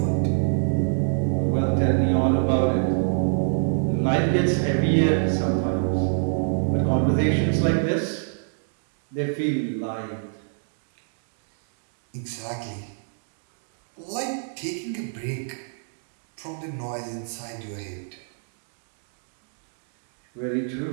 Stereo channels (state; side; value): silent; left; digital silence